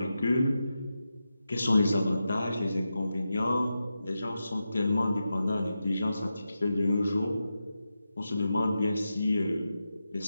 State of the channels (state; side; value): inverted; both; correlation -0.90